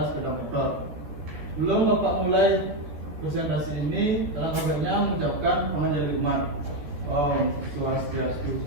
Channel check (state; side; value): late; left; 13 ms